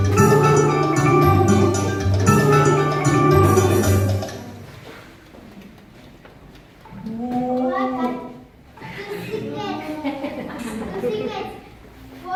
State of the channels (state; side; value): identical; both; correlation 1.00